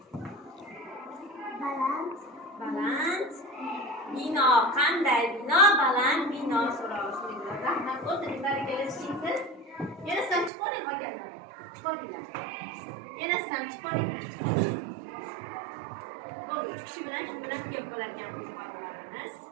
Baland. Bino qanday bino? Baland bino so'rashdi. Rahmat, o'tiring, barakalar, tushunsiz? Yana sizlar chiqoring qolganlar. Chiqoringlar. Yana sizlar chiqoringlar. Bo'ldi, 3 kishi bilan shu bilan ko'p bo'ladigan qo'zg'olonlarimiz.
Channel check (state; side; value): drops out; left; at 10.5 s